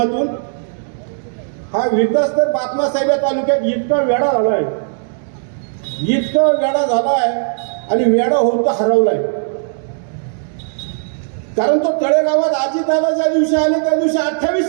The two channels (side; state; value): left; silent; digital silence